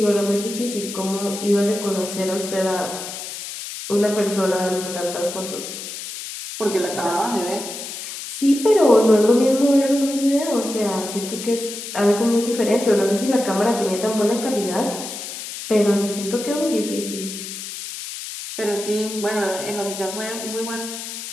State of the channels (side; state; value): left; noise; hiss, 9 dB below the sound